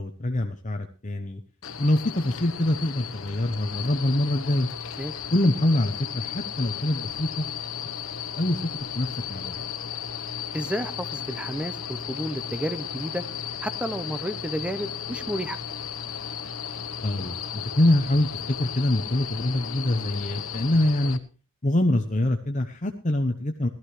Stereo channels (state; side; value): normal; both; correlation 0.81